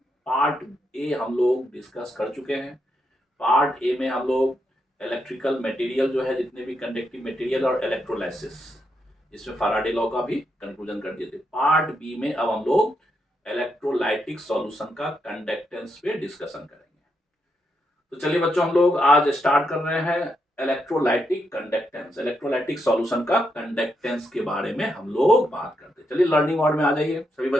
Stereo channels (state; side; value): normal; both; correlation 0.81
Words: पार्ट ए हम लोग डिस्कस कर चुके हैं। पार्ट ए में हम लोग इलेक्ट्रिकल मटेरियल जो है, जितने भी कंडक्टिव मटेरियल और इलेक्ट्रोलाइसिस, इसमें फैराडे लॉ का भी कंक्लूजन कर दिए थे। पार्ट बी में अब हम लोग इलेक्ट्रोलाइटिक सॉल्यूशन का कंडक्टेंस पे डिस्कशन करेंगे। तो चलिए बच्चों, हम लोग आज स्टार्ट कर रहे हैं इलेक्ट्रोलाइटिक कंडक्टेंस। इलेक्ट्रोलाइटिक सॉल्यूशन का कंडक्टेंस के बारे में हम लोग बात करते हैं। चलिए लर्निंग मोड में आ जाइए सभी